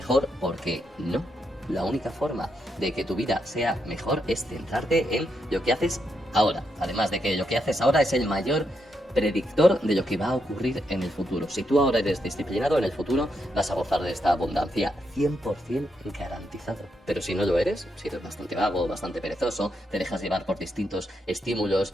porque no. La única forma de que tu vida sea mejor es centrarte en lo que haces ahora. Además de que lo que haces ahora es el mayor predictor de lo que va a ocurrir en el futuro. Si tú ahora eres disciplinado, en el futuro vas a gozar de esta abundancia 100% garantizado. Pero si no lo eres, si eres bastante vago, bastante perezoso, te dejas llevar por distintos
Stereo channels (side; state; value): both; normal; correlation 0.81